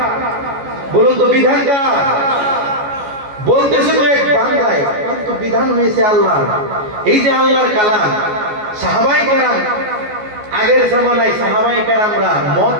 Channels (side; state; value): left; late; 14 ms